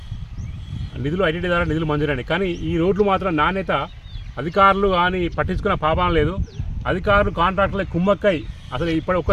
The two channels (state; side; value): identical; both; correlation 1.00